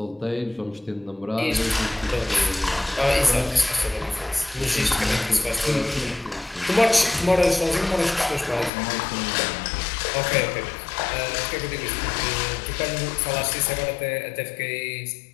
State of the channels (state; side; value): drops out; right; at 8.7 s